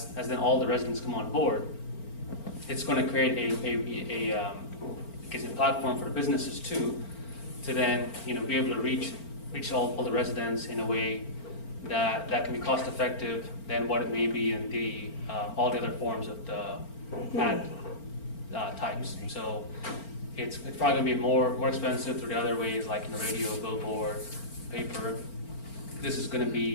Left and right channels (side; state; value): right; late; 4.4 ms